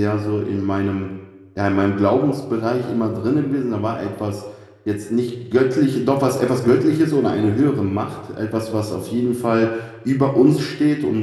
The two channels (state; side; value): identical; both; correlation 1.00